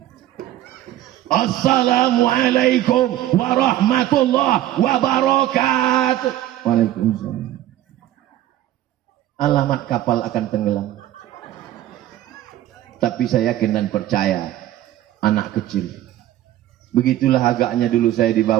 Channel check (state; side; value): quieter; left; 13.7 dB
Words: Assalamualaikum warahmatullahi wabarakatuh. Waalaikumsalam. Alamat kapal akan tenggelam. Tapi saya yakin dan percaya, anak kecil. Begitulah agaknya dulu saya